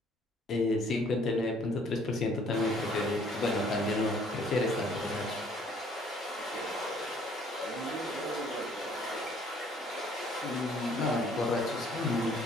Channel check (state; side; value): normal; both; correlation 0.60